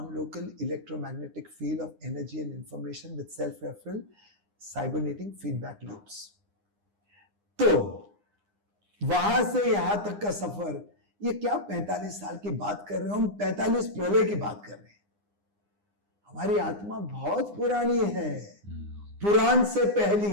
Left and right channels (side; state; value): left; late; 9.8 ms